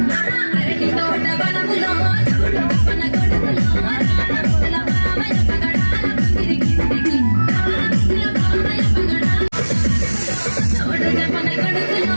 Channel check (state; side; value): inverted; both; correlation -1.00